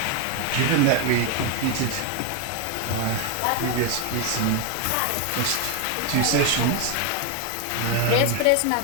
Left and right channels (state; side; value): different; both; correlation 0.01